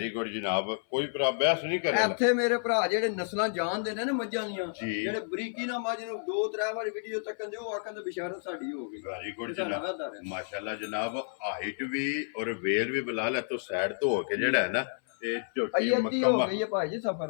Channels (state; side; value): silent; right; 56 dB below the other